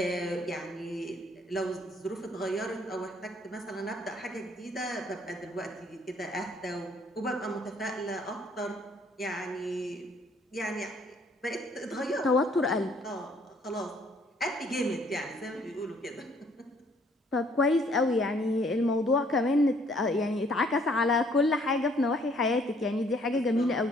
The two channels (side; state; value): both; normal; correlation 0.63